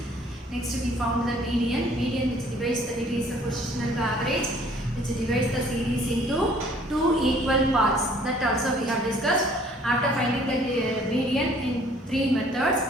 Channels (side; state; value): both; normal; correlation 0.57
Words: Next, we found the median, which divides the positional average, which divides the series into two equal parts. That also we have discussed. After finding the median in three methods,